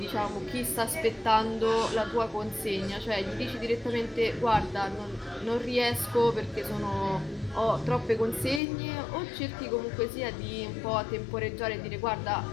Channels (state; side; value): drops out; right; at 8.6 s